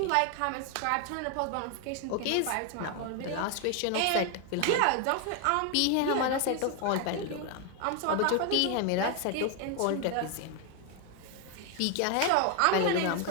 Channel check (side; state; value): both; different; correlation 0.01